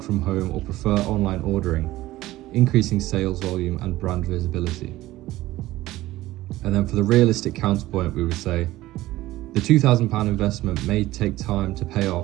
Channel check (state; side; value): quieter; left; 16.7 dB